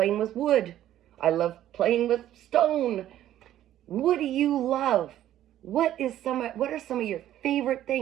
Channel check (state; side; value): quieter; left; 12.4 dB